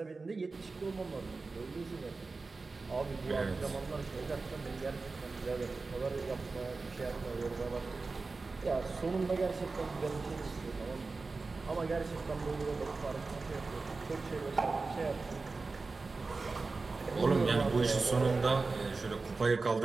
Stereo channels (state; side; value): quieter; left; 3.9 dB